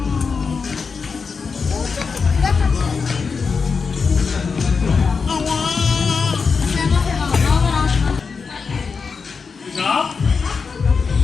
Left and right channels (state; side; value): quieter; right; 5.2 dB